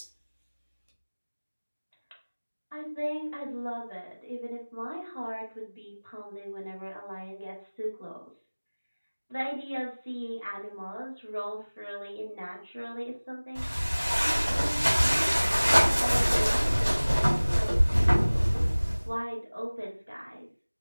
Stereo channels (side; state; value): both; inverted; correlation -1.00